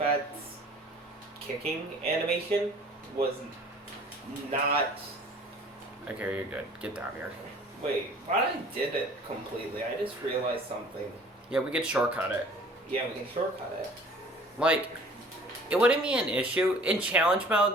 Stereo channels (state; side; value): normal; both; correlation 0.50